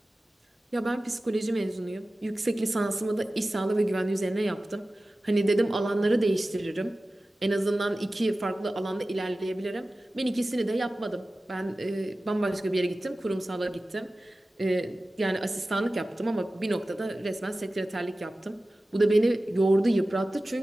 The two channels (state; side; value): normal; both; correlation 0.96